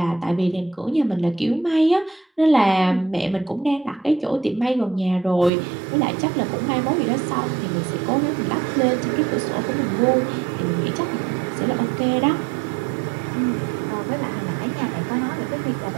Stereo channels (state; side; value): drops out; left; at 5.5 s